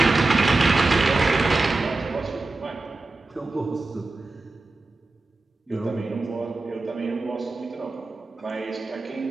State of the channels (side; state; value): left; quieter; 3.2 dB